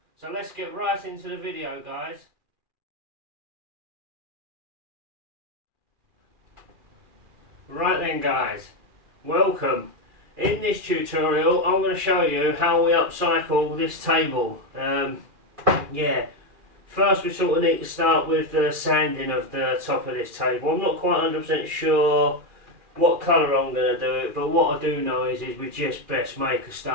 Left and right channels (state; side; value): late; left; 2.4 ms